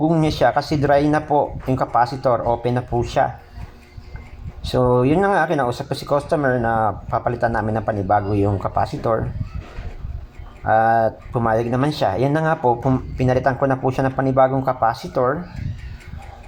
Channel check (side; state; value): both; identical; correlation 1.00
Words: niya siya kasi dry na po yung capacitor, open na po siya. So yun na nga, kinausap ko si customer na papalitan namin ng panibago yung capacitor at pumayag naman siya. Yan na nga po, pinalitan ko na po siya ng panibagong capacitor.